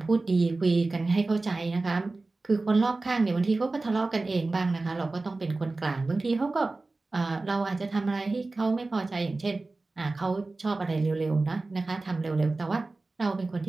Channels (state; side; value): quieter; left; 3.3 dB